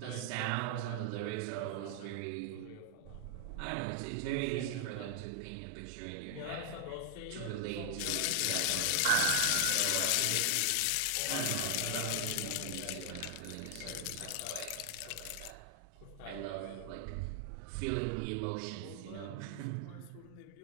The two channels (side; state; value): both; different; correlation 0.00